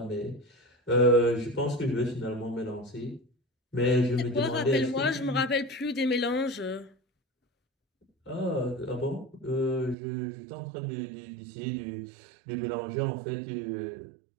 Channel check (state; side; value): drops out; left; at 10.0 s